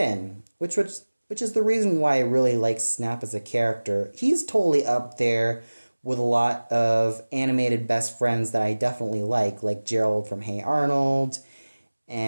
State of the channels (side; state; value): both; inverted; correlation -1.00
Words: which is the reason why I really like Snap as a character. He's totally up there with a lot of animated best friends that I definitely like Gerald from Hey Arnold,